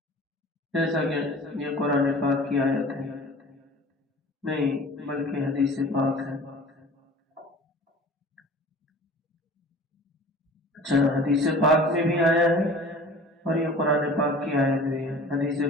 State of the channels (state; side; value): normal; both; correlation 0.43